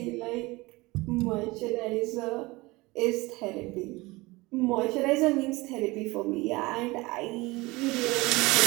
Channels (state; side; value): quieter; left; 22.3 dB